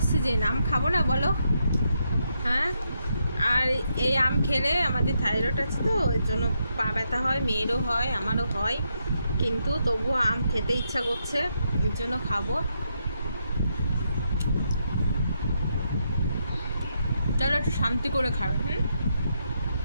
সিজন, আম খাবো না বলো? হ্যাঁ, আর এই আম খেলে আমাদের থাইরয়েড আছে, তো ওই জন্য পা ব্যথা হয়, মেয়েরও হয়, আমারও হয়, কিন্তু তবুও আম খেতে ইচ্ছা করছে, এর জন্য খাবো। চলো একটু শান্তি করে খাবে।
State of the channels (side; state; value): both; inverted; correlation -0.80